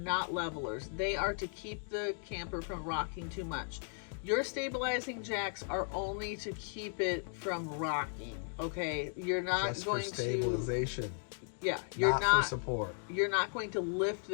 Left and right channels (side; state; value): right; silent; 54 dB below the other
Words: levelers. They are to keep the camper from rocking too much. Your stabilizing jacks are only to keep it from rocking, okay? You're not just going for stabilization. Yeah, you're not for support. You're not going to lift